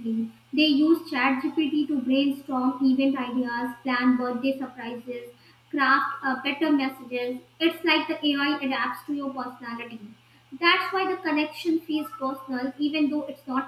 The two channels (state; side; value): identical; both; correlation 1.00